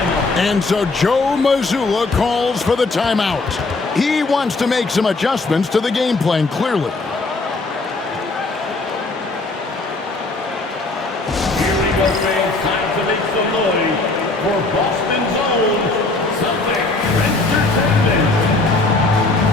And so Joe Mazzulla calls for the timeout. He wants to make some adjustments to the game plan, clearly. Here we go, fans. Time to make some noise for Boston's own Celtics Entertainment.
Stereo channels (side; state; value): right; quieter; 3.4 dB